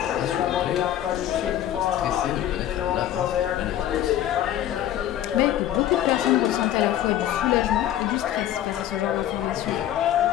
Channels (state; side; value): quieter; right; 12.0 dB